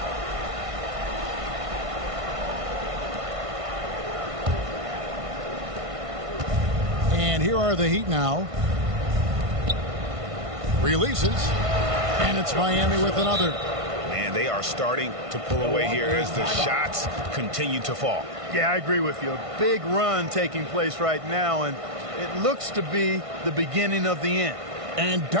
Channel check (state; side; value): late; left; 1.5 ms